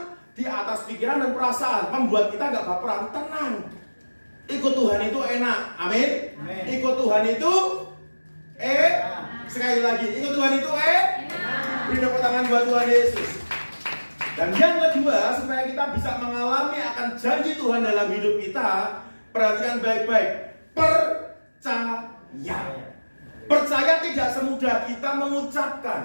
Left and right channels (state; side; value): inverted; both; correlation -1.00